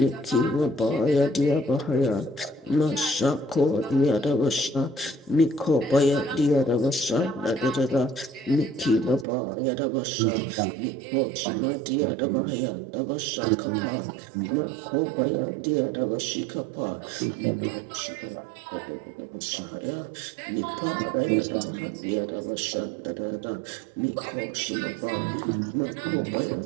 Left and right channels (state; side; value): drops out; left; at 9.2 s